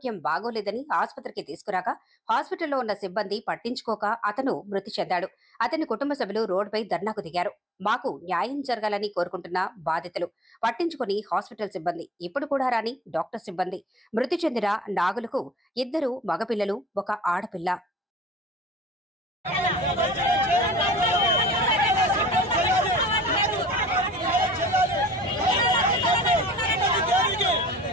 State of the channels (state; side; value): normal; both; correlation 0.52